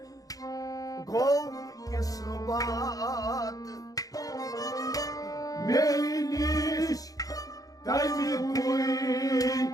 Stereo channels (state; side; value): late; right; 0.17 ms